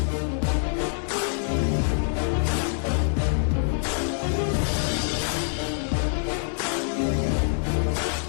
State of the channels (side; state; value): right; silent; 61 dB below the other